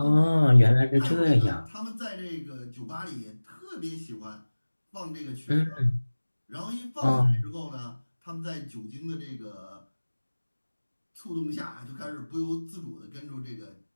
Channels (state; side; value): inverted; both; correlation -1.00